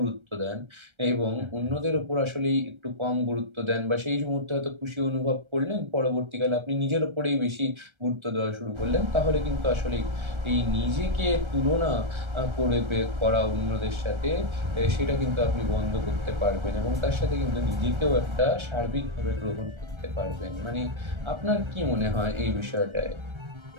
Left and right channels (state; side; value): late; left; 1.3 ms